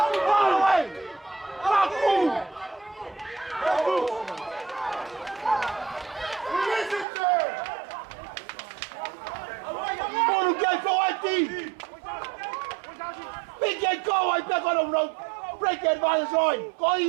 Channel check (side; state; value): left; drops out; at 7.1 s